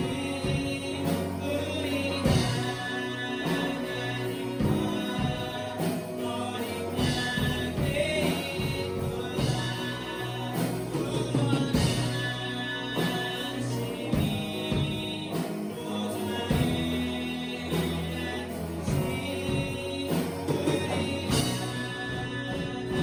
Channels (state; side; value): identical; both; correlation 1.00